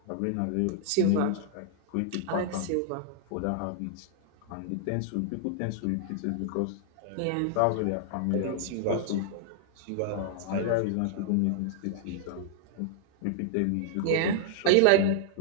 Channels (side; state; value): both; different; correlation -0.01